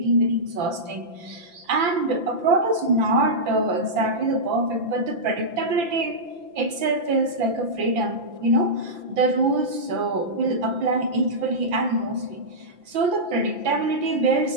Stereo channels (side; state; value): left; late; 5.9 ms